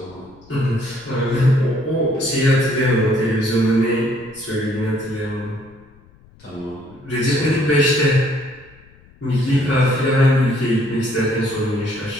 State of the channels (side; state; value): left; noise; rumble, 27 dB below the sound